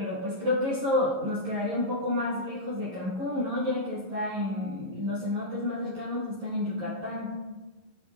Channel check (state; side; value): late; left; 11 ms